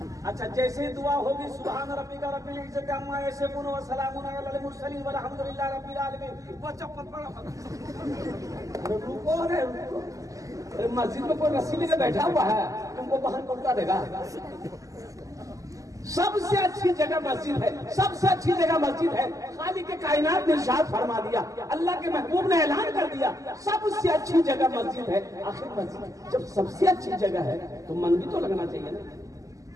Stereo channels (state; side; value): late; left; 0.16 ms